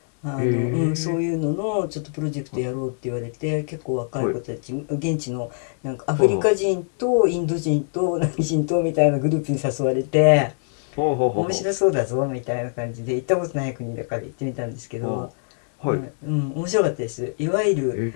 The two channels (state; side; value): silent; right; 62 dB below the other